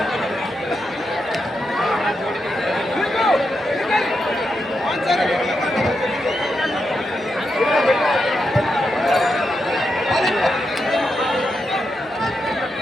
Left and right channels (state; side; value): normal; both; correlation 0.85